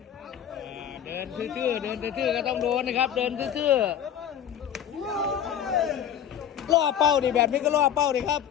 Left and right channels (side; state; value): right; quieter; 9.3 dB